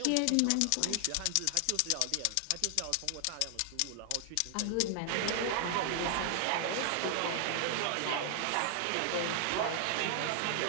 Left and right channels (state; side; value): different; both; correlation 0.00